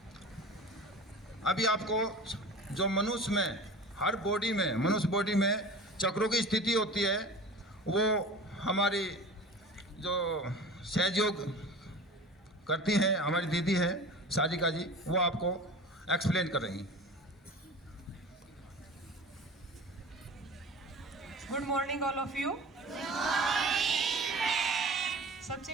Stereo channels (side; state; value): both; normal; correlation 0.37